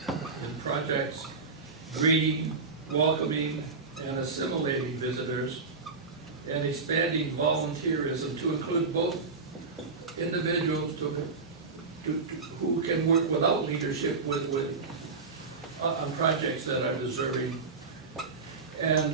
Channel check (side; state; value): left; quieter; 4.4 dB